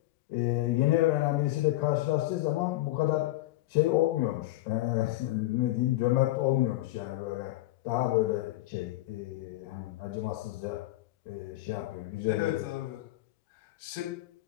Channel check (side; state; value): right; quieter; 17.0 dB